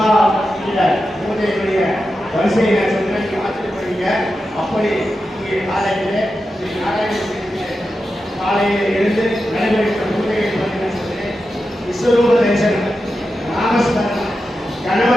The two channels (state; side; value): normal; both; correlation 0.90